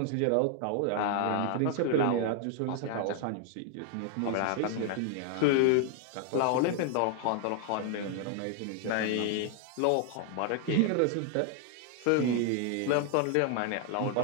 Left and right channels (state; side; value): different; both; correlation 0.00